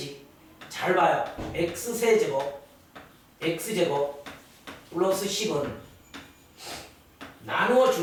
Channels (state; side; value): identical; both; correlation 1.00